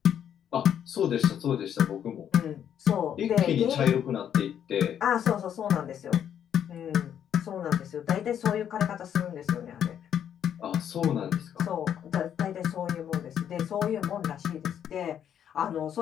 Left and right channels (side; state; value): right; quieter; 9.3 dB